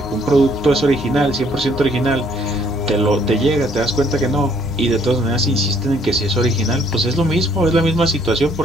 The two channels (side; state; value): both; normal; correlation 0.64